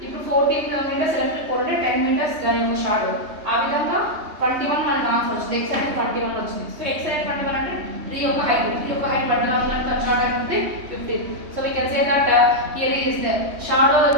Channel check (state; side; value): late; left; 3.2 ms